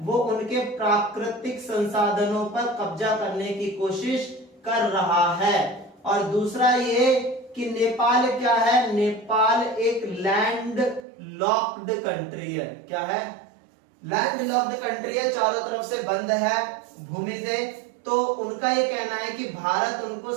वो उनके प्राकृतिक संसाधनों पर कब्जा करने की कोशिश कर रहा है। और दूसरा ये कि नेपाल क्या है, नेपाल एक लैंड लॉक्ड कंट्री है। क्या है? लैंड लॉक्ड कंट्री है, चारों तरफ से बंद है भूमि से। तो उनका ये कहना है कि भारत उनको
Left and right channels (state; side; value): drops out; left; at 11.1 s